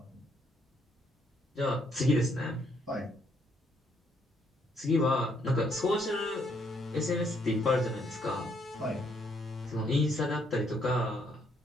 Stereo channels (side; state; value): both; normal; correlation 0.71